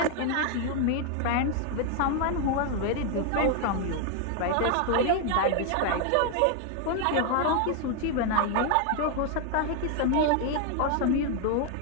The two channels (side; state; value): both; different; correlation 0.01